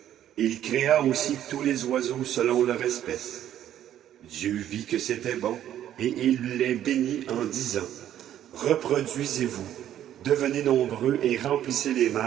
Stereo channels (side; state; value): left; quieter; 11.3 dB